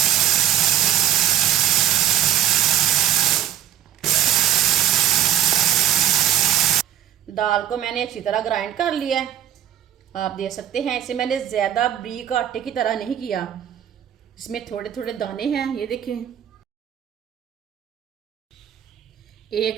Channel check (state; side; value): quieter; left; 10.9 dB